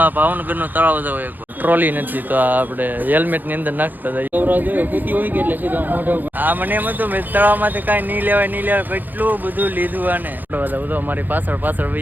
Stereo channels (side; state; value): left; late; 0.086 ms